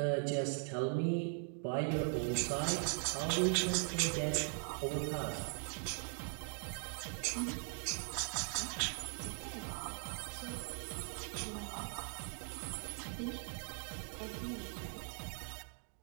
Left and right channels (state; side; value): silent; left; 51 dB below the other